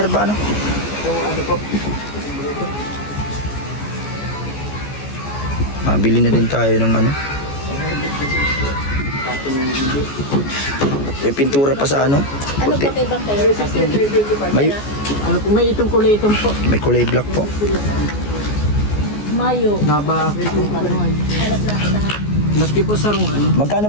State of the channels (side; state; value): right; late; 14 ms